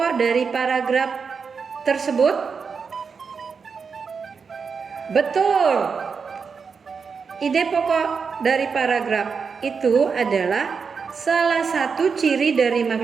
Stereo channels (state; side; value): quieter; left; 5.6 dB